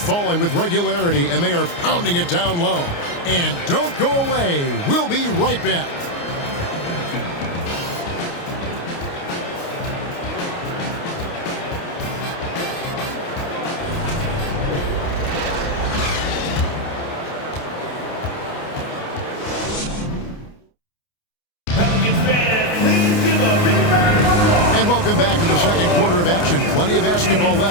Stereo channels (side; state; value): right; late; 29 ms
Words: with regularity, and they are pounding it down low. And don't go away. We'll be right back. Welcome back to the second quarter of action. Plenty of basketball